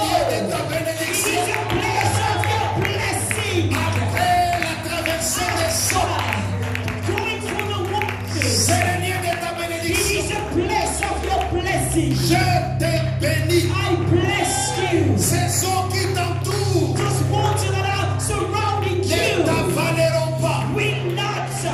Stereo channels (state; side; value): identical; both; correlation 1.00